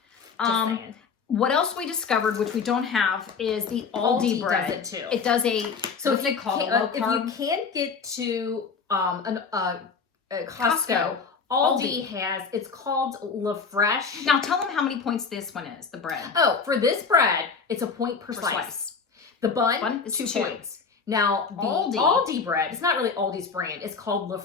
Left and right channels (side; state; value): right; quieter; 5.3 dB